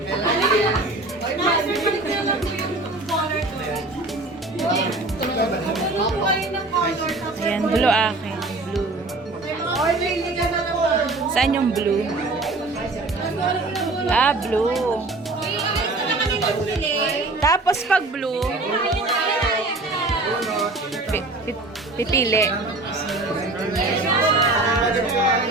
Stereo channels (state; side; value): quieter; left; 3.0 dB